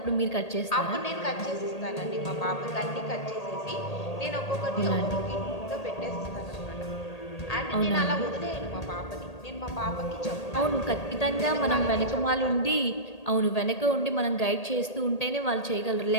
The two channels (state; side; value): late; right; 1.8 ms